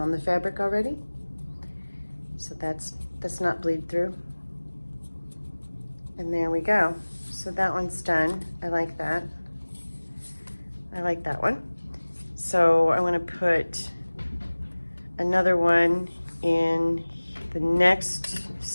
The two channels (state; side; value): inverted; both; correlation -1.00